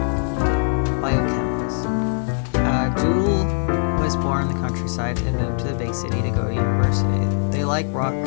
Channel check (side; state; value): right; silent; 59 dB below the other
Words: Biochemist. Jewel was born in the countryside and moved to the big city to go to university. They like rock